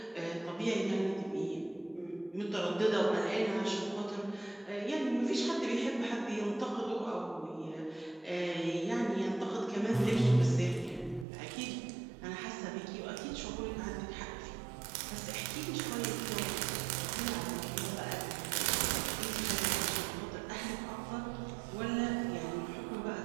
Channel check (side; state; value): left; drops out; at 11.2 s